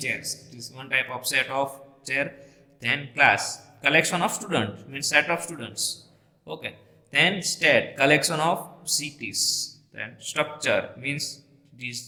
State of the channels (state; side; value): identical; both; correlation 1.00